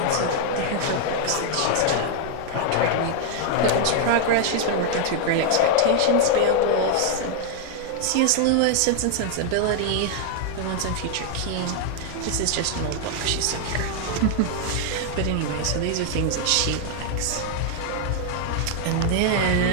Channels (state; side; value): different; both; correlation 0.00